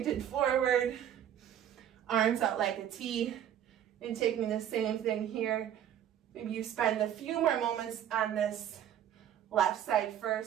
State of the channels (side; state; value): left; quieter; 10.3 dB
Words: forward, arms out like a T, and taking the same thing here. Maybe you spend a few more moments on this left side